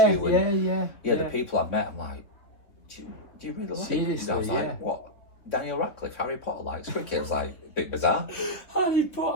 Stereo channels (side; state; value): right; late; 3.6 ms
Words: you. And the people I've met, I'm like, do you really like it? I was like, what? Daniel Radcliffe, Harry Potter likes cricket. I was like, a bit bizarre. Harry